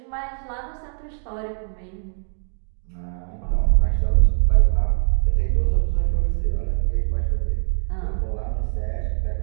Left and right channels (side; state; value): left; silent; digital silence